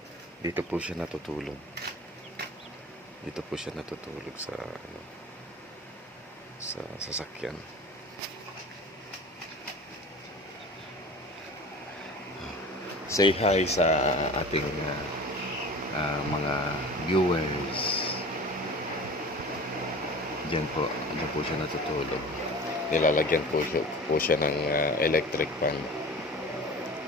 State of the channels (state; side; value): normal; both; correlation 0.38